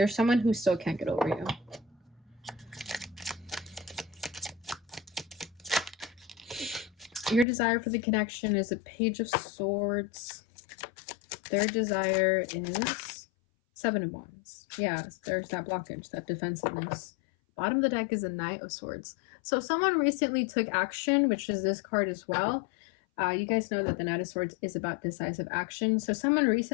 someone who still can't get over you. Your desire for the connection is a Page of Swords. Their desire is 7 of Wands. Yeah, there's that blockage, that defensiveness. Bottom of the deck is a Knight of Swords. So someone recently took action, which is this card as well. You guys know that the Knight of Swords is about decisive action. So someone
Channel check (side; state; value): right; drops out; at 7.5 s